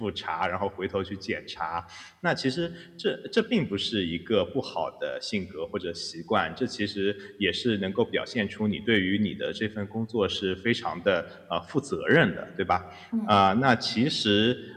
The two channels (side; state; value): both; identical; correlation 1.00